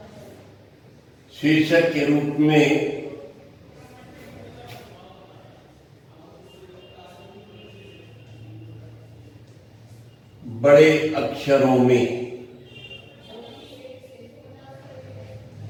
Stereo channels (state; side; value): identical; both; correlation 1.00